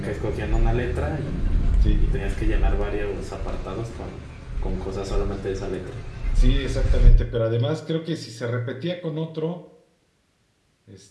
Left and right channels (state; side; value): identical; both; correlation 1.00